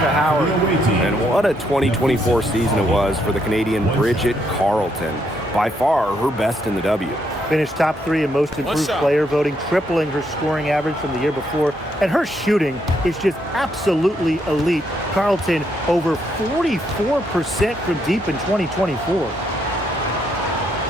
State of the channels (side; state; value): both; normal; correlation 0.75